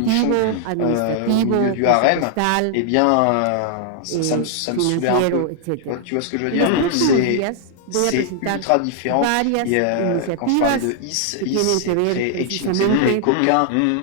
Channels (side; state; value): both; different; correlation 0.00